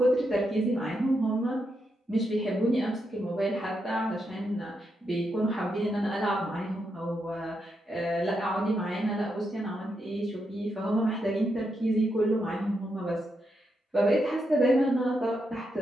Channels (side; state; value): both; normal; correlation 0.83